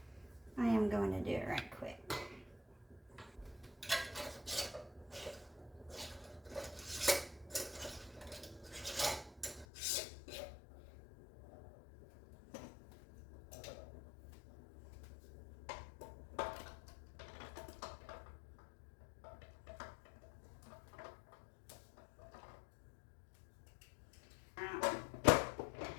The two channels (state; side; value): drops out; right; at 9.7 s